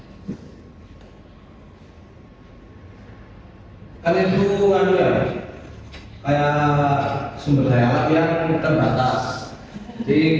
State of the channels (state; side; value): identical; both; correlation 1.00